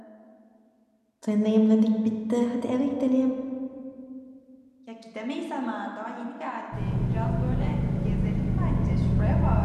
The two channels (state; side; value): identical; both; correlation 1.00